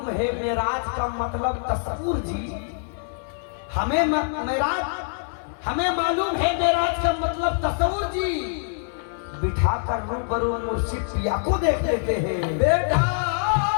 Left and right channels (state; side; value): silent; right; digital silence